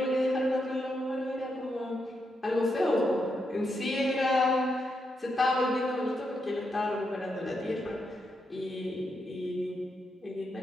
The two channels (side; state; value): both; normal; correlation 0.82